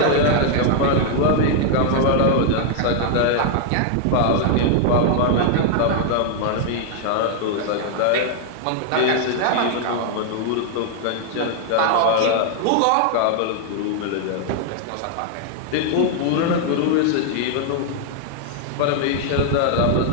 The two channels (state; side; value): different; both; correlation 0.00